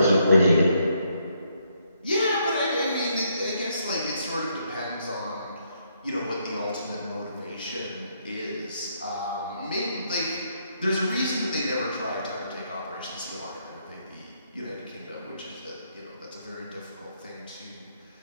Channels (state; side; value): inverted; both; correlation -0.74